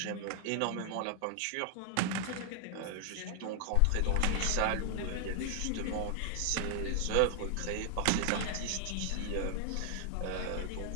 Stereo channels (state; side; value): different; both; correlation 0.00